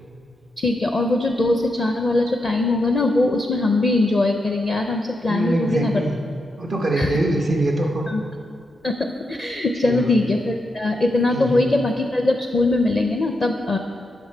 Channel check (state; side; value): normal; both; correlation 0.84